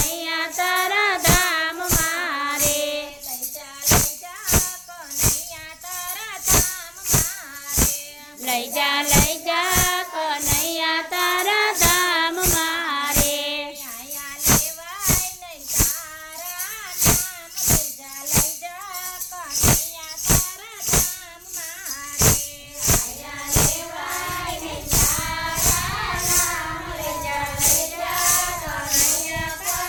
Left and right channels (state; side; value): identical; both; correlation 1.00